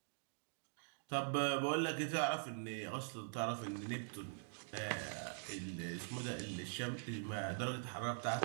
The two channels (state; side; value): silent; left; digital silence